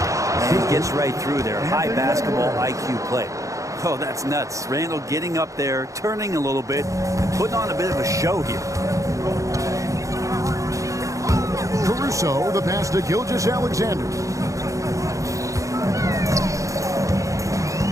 he gets right through there. High basketball IQ play. Oh, that's nuts. Randall getting up there, turning a little bit, and putting on a bit of a show here. Caruso, the pass to Gilgeous-Alexander.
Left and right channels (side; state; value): left; late; 0.16 ms